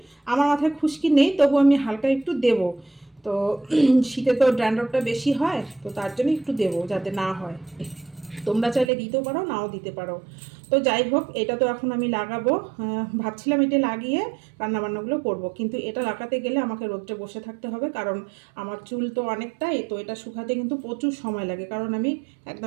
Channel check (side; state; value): left; drops out; at 8.8 s